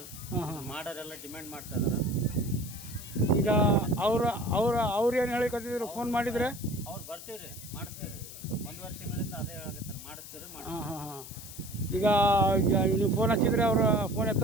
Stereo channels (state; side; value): noise; left; hiss, 13 dB below the sound